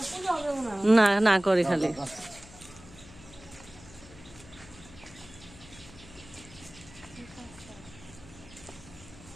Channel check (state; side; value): noise; left; hum, 20 dB below the sound